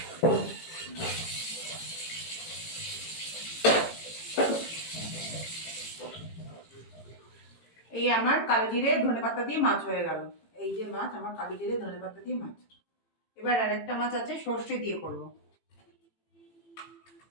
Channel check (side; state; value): right; late; 18 ms